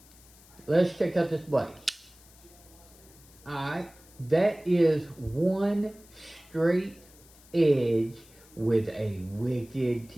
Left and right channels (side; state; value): left; noise; hiss, 25 dB below the sound